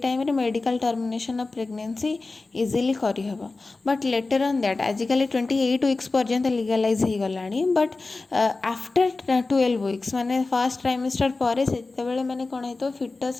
रे medical termination of pregnancy easily करी हबो. बट लेटर ऑन दैट आजिकली 28 weeks पर्यंत लीगलाइज हो गलानी. बट आफ्टर 12 weeks माने फर्स्ट ट्राइमेस्टर पर से माने कौन है तो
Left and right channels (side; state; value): right; quieter; 3.6 dB